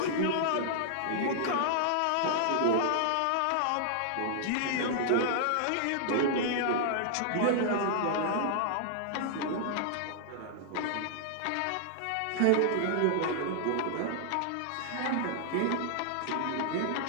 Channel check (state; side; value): different; both; correlation -0.01